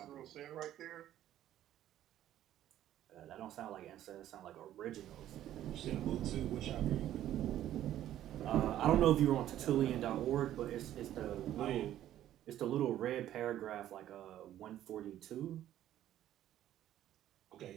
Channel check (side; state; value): left; quieter; 12.3 dB